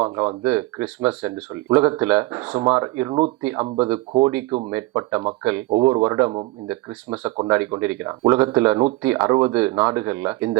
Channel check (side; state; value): left; quieter; 20.4 dB